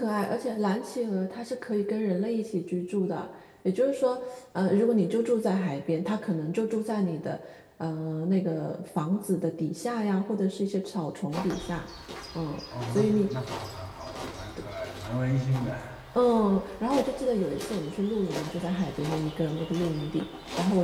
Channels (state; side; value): identical; both; correlation 1.00